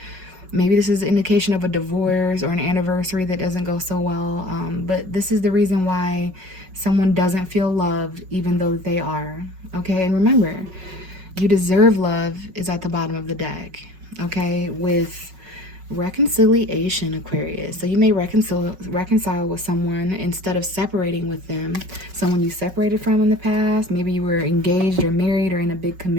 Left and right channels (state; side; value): late; left; 5.4 ms